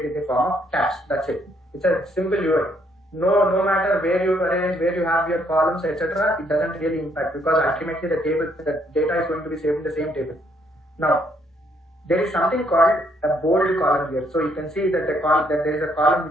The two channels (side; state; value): both; normal; correlation 0.70